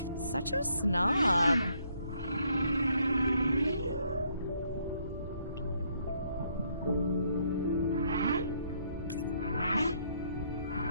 Such a snob.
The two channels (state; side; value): inverted; both; correlation -0.70